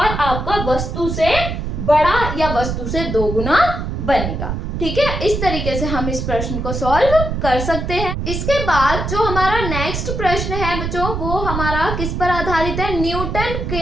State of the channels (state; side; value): noise; right; rumble, 3 dB below the sound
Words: आपका वस्तु से बड़ा या वस्तु से 2 गुना बनेगा। ठीक है, इस तरीके से हम इस प्रश्न को सॉल्व कर सकते हैं। इसके बाद जो हमारा नेक्स्ट प्रश्न है बच्चों, वो हमारा किस पर आधारित है, न्यूटन